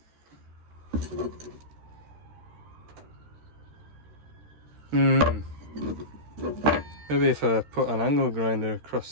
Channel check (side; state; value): left; late; 13 ms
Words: Maybe if I put an angle grinder